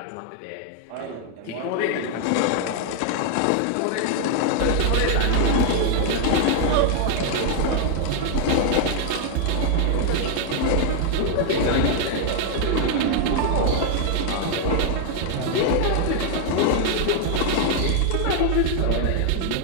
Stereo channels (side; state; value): both; different; correlation 0.00